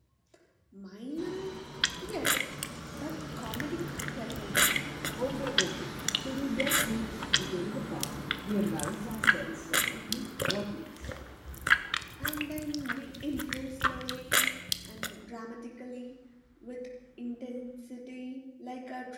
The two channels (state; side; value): identical; both; correlation 1.00